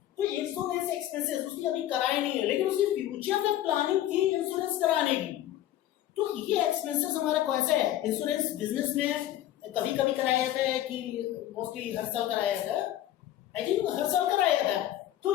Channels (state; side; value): quieter; right; 13.0 dB